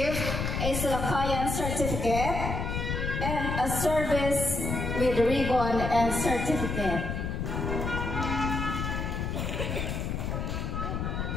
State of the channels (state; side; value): noise; left; rumble, 2 dB below the sound